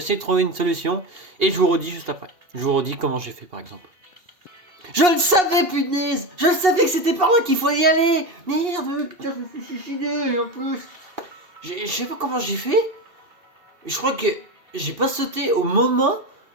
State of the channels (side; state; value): left; late; 2.7 ms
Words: de trouver une solution et je vous redis juste après. Je vous redis comment j'ai fait par exemple. Je le savais, punaise! Je le savais que c'était par là qu'il faut y aller! Merde, putain, je me suis suicidé en plus! Je sais pas comment j'ai fait. Je crois que j'ai pas sauté au moment.